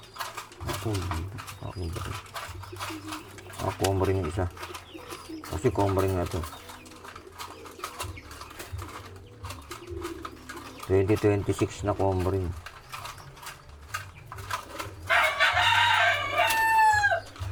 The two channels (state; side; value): identical; both; correlation 1.00